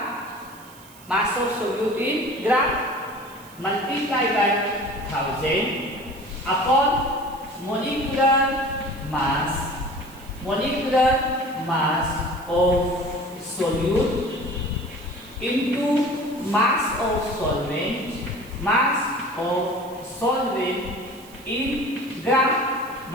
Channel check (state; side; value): noise; right; hiss, 22 dB below the sound